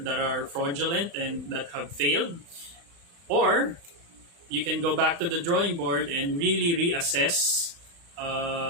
are fraudulent and that have failed, or you can go back to the drawing board and really reassess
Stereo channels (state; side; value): late; left; 35 ms